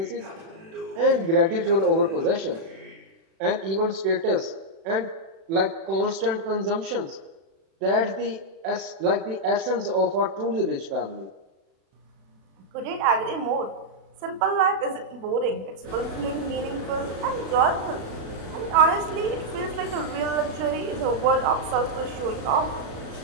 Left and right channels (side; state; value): left; late; 36 ms